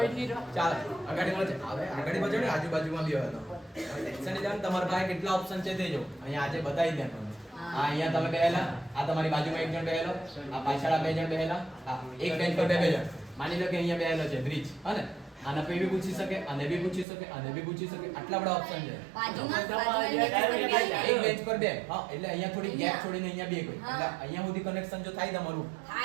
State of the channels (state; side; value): drops out; left; at 17.1 s